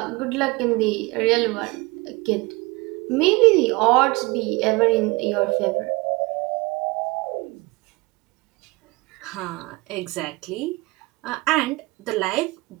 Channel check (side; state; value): left; quieter; 24.1 dB